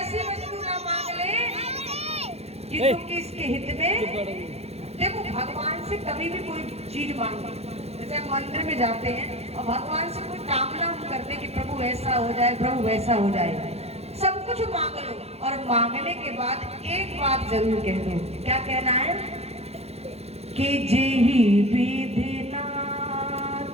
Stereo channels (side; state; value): left; late; 0.30 ms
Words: वस्तु ना मांग ले कि इसके हित में। देखो भगवान से कभी भी कोई चीज मांगो, जैसे हम मंदिर में जाते हैं और भगवान से कोई कामना हम करते कि प्रभु ऐसा हो जाए, प्रभु वैसा हो जाए, सब कुछ मांग लो और मांगने के बाद एक बात जरूर कह दो। क्या कहना है? कि जेहि विधिनाथ